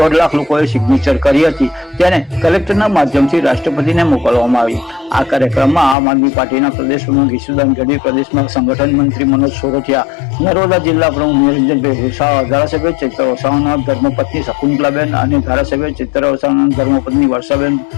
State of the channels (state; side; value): drops out; right; at 6.0 s